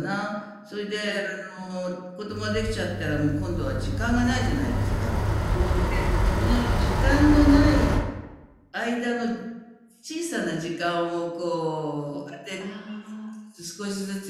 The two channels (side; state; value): both; identical; correlation 1.00